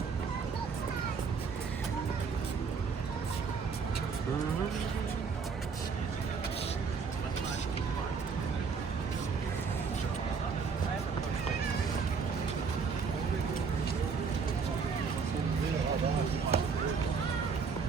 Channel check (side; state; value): left; quieter; 5.6 dB